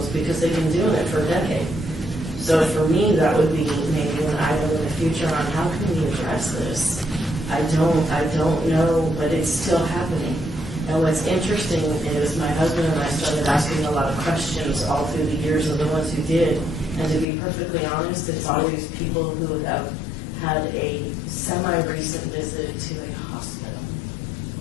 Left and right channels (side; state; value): right; drops out; at 17.2 s